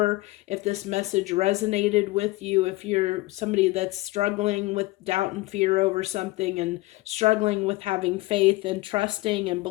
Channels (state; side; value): quieter; right; 20.5 dB